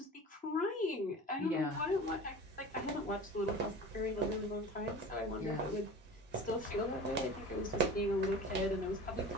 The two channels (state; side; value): normal; both; correlation 0.36